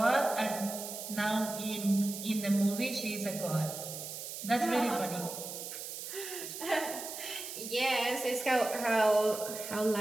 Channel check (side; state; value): right; noise; hiss, 8 dB below the sound